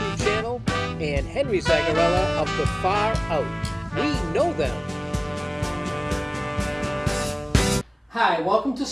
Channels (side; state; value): both; identical; correlation 1.00